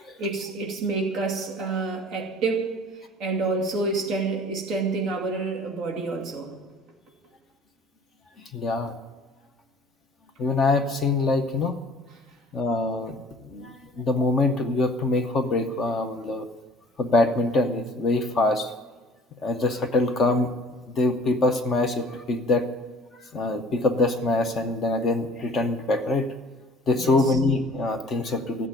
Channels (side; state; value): both; normal; correlation 0.50